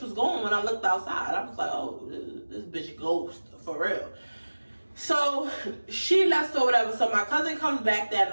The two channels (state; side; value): inverted; both; correlation -1.00